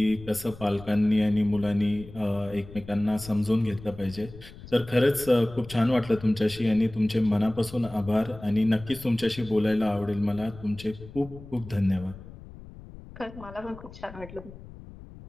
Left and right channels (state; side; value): noise; left; rumble, 17 dB below the sound